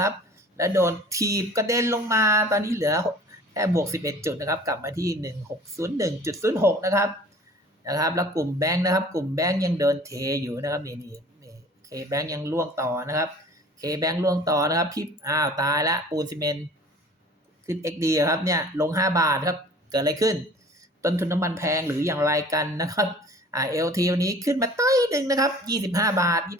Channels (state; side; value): normal; both; correlation 0.47